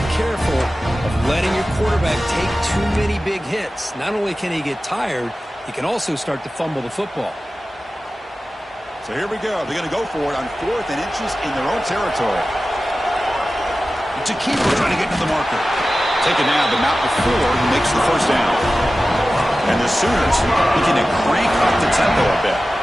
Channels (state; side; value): normal; both; correlation 0.95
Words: careful of letting your quarterback take too many big hits. Not only can he get tired, he can also start to fumble the football. So here we go. They're going to go for it on 4th and inches in their own territory. It's a keeper trying to get to the marker. Taken down, but not before he makes the 1st down. And the Sooners looking to crank up the tempo a bit.